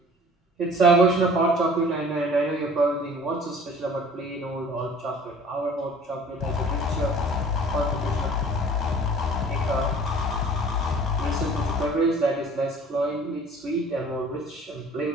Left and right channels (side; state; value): both; normal; correlation 0.49